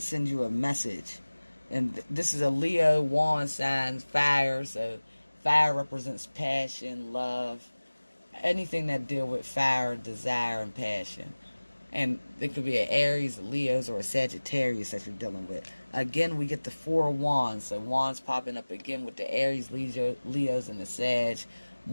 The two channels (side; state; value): both; inverted; correlation -1.00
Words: you a message. And this is a Leo wand sign, fire. So fire represents passion, love, anything that deal with fire, desire, and passion. And it could be an Aries, a Leos, or a Sagittarius that you're dealing with. Again, we get the 4 of Wands. So Wands popping up again with the Aries, Leos, and the Sag.